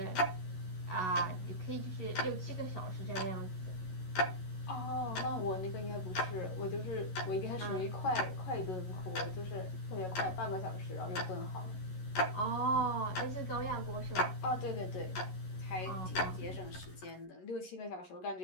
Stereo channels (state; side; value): late; right; 11 ms